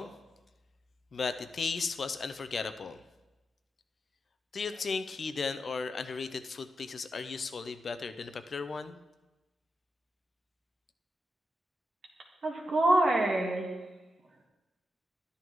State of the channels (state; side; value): normal; both; correlation 0.87